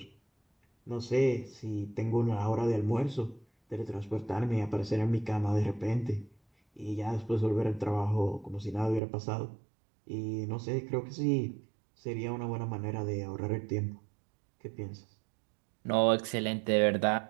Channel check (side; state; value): left; drops out; at 9.0 s